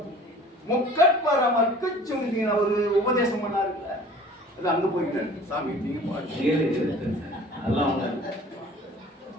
முக்கட்பரமற்கு சுண்டின ஒரு உபதேசம் பண்ணாருல்ல, அது அங்க போயிட்டாரு. சாமி அதெல்லாம்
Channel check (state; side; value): normal; both; correlation 0.47